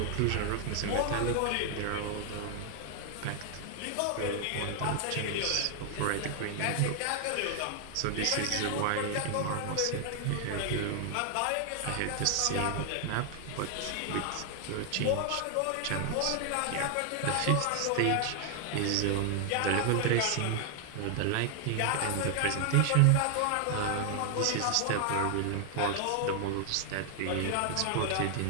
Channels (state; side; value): different; both; correlation 0.00